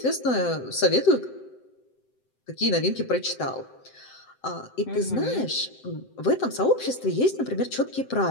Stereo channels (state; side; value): late; right; 7.8 ms